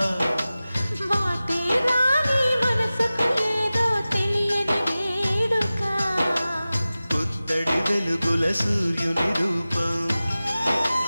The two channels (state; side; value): inverted; both; correlation -0.96